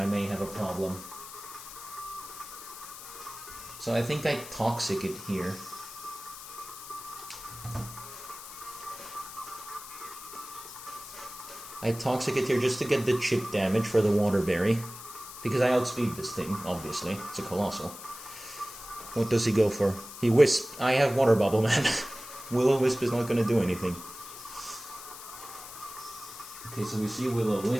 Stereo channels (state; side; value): noise; left; hiss, 13 dB below the sound